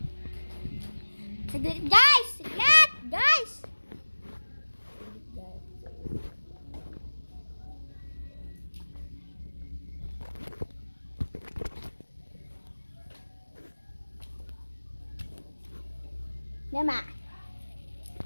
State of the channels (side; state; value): both; inverted; correlation -1.00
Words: Saglit guys! Saglit! Guys! Nama,